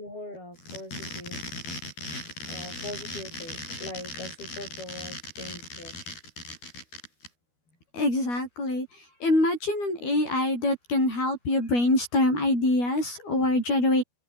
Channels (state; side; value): late; right; 12 ms